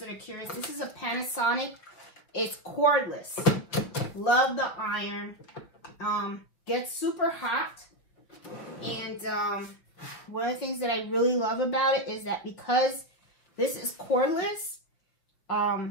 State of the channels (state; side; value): late; right; 6.1 ms